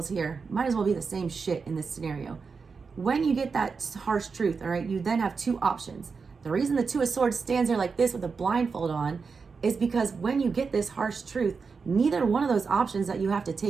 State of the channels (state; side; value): quieter; left; 5.1 dB